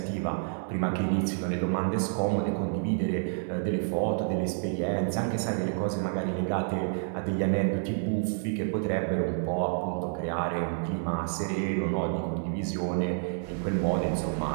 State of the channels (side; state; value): left; silent; 59 dB below the other